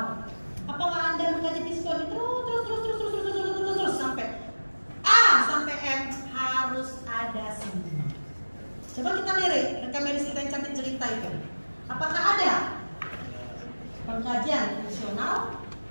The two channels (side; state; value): both; inverted; correlation -1.00